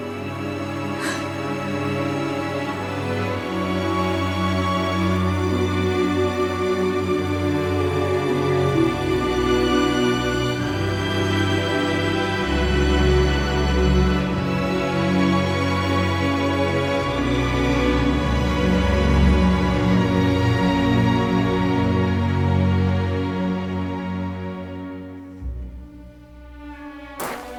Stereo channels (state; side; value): identical; both; correlation 1.00